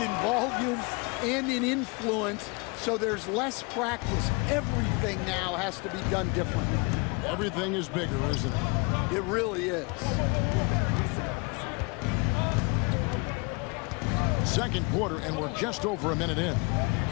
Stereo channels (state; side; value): quieter; right; 29.7 dB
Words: volume and in influence, so there's less practice. Everything now has to be done differently. Everything is bigger, isn't it? It really is. Second quarter, and we're just over a minute in.